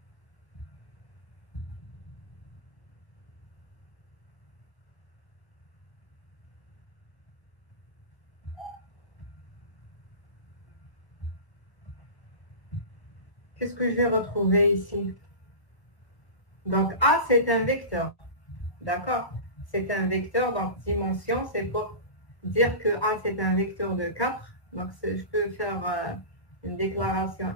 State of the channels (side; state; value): right; late; 1.0 ms